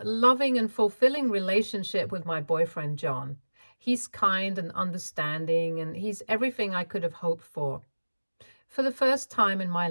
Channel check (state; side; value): inverted; both; correlation -1.00